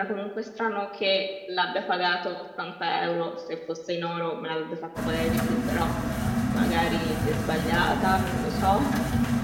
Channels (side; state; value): both; identical; correlation 1.00